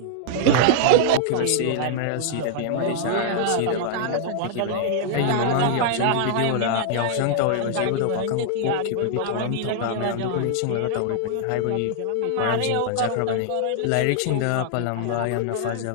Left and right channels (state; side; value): different; both; correlation -0.01